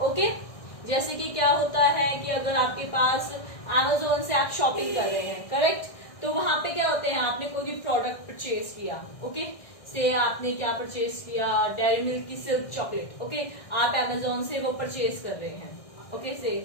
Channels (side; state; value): right; late; 1.6 ms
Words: ओके, जैसे कि क्या होता है कि अगर आपके पास Amazon से आप शॉपिंग कर रहे हैं, करेक्ट, तो वहां पे क्या होते हैं, आपने कोई भी प्रोडक्ट परचेज किया, ओके, से आपने क्या परचेज किया, डेयरी मिल्क की सिल्क चॉकलेट, ओके, आप Amazon से वो परचेज कर रहे हैं, ओके,